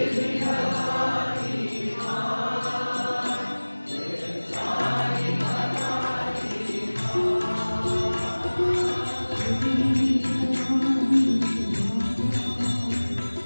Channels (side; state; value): both; inverted; correlation -1.00